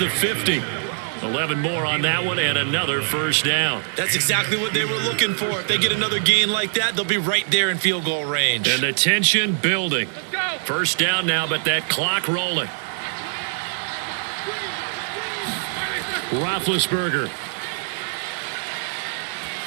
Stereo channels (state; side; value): silent; left; 60 dB below the other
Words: 50. 11 more on that one and another 1st down. That's exactly what they were looking for. If they get another gain like that, they'll be right there in field goal range. And the tension building. 1st down now, but that clock rolling. Roethlisberger.